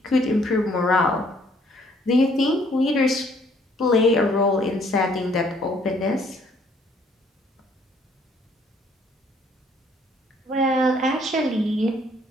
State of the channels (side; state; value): both; normal; correlation 0.63